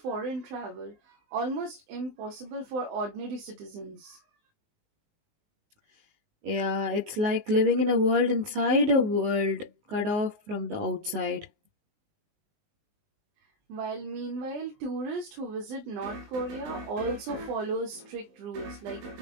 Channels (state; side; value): late; left; 19 ms